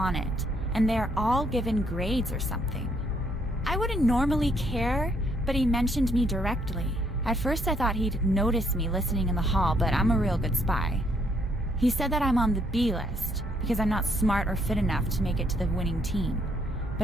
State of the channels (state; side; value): normal; both; correlation 0.70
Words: it, and they're all given grades or something. I wouldn't normally care, but he mentioned me directly. At first I thought he'd notice me listening in the hall, but I'm a real good spy. He said that I'm on the B list, because I'm not smart or fit enough to make it to the winning team,